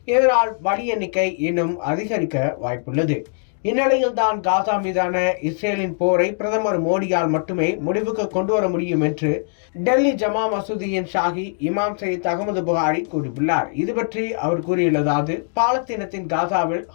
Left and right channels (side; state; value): right; silent; digital silence